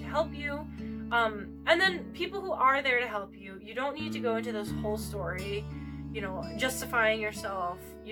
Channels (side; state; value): both; identical; correlation 1.00